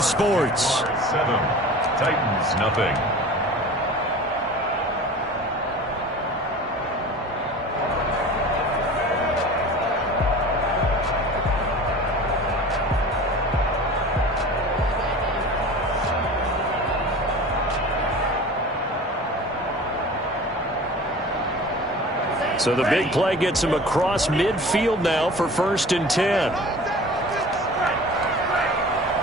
7, Titans nothing. So the big play gets him across midfield now for 1st and 10.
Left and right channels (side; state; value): both; normal; correlation 0.39